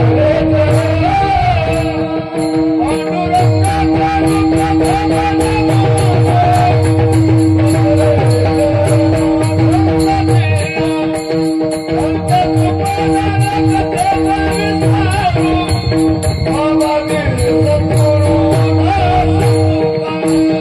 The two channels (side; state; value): both; identical; correlation 1.00